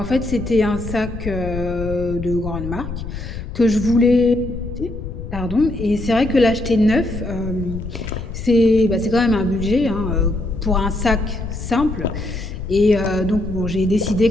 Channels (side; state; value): left; noise; rumble, 8 dB below the sound